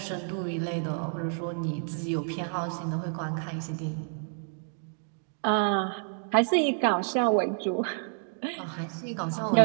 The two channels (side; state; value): left; silent; 58 dB below the other